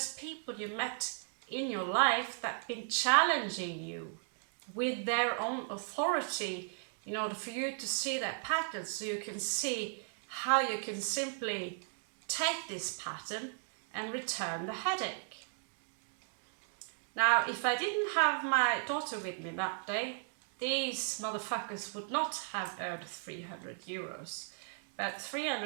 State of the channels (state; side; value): silent; left; digital silence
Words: people you met in your life that have been challenging you with their own authority, in order for you to see that pattern, so you can see how you can simply take this pattern and return the headache. Now, if I didn't have my daughter with me that day, these motherfuckers would not have earned 300 euros. But